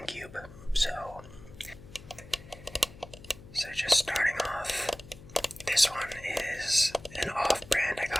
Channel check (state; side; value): noise; left; hum, 18 dB below the sound